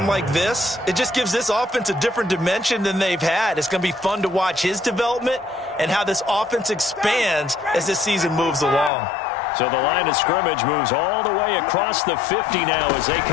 like this, it just gives this offense a different dimension than they've had. It's going to be fun to watch his development and how this offense expands as this season moves along. So the line of scrimmage moves all the way across the 50 now as they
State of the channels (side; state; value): right; drops out; at 8.9 s